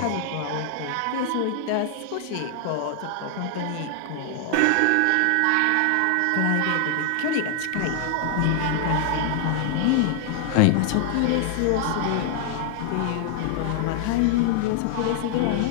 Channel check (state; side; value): different; both; correlation 0.00